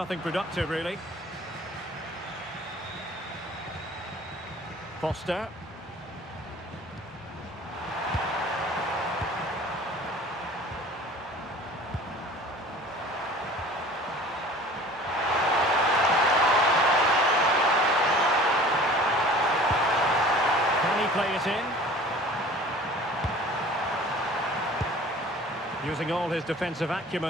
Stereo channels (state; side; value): normal; both; correlation 0.45